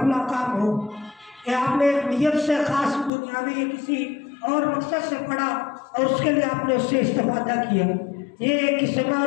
فلاں کام ہو، یا آپ نے ایک نیت سے خاص دنیاوی یا کسی اور مقصد سے پڑھا اور اس کے لیے آپ نے اس سے استفادہ کیا، یہ ایک قسم ہے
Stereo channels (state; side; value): drops out; right; at 3.1 s